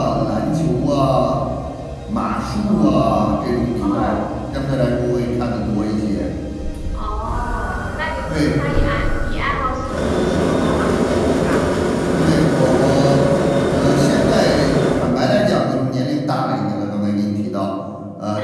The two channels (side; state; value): both; identical; correlation 1.00